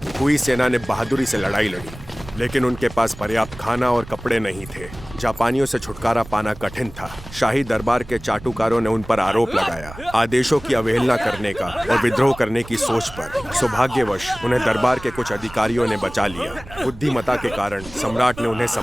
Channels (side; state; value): right; noise; rumble, 16 dB below the sound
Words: हुई सेना ने बहादुरी से लड़ाई लड़ी, लेकिन उनके पास पर्याप्त खाना और कपड़े नहीं थे। जापानियों से छुटकारा पाना कठिन था। शाही दरबार के चाटुकारों ने उन पर आरोप लगाया, आदेशों की अवहेलना करने का और विद्रोह करने की सोच पर। सौभाग्यवश उन्हें दरबार के कुछ अधिकारियों ने बचा लिया। बुद्धिमता के कारण सम्राट ने उन्हें